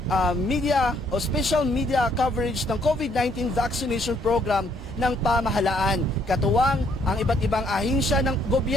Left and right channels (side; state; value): both; normal; correlation 0.68